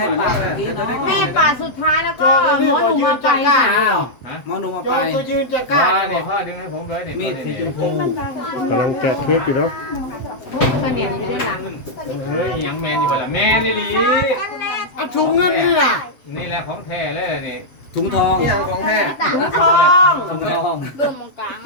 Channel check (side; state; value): right; late; 7.7 ms